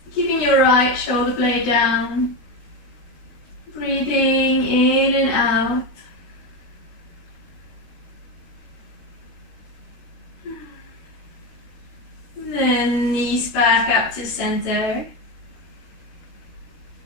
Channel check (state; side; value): late; right; 13 ms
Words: Keeping your right shoulder blade down. Breathing in and out. Then knees back up to center.